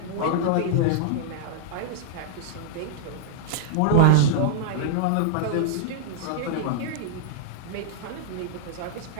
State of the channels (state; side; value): different; both; correlation -0.01